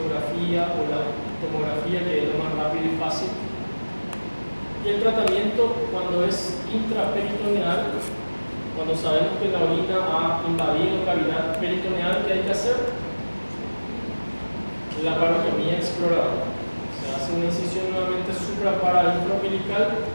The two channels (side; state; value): both; inverted; correlation -1.00